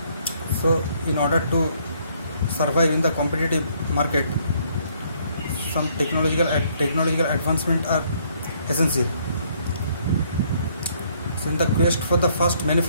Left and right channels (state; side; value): inverted; both; correlation -0.66